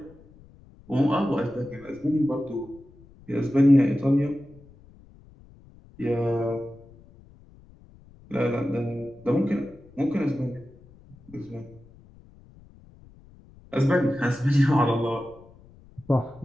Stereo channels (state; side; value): noise; left; rumble, 24 dB below the sound